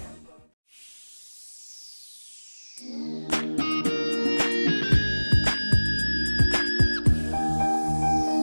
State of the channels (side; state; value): both; inverted; correlation -1.00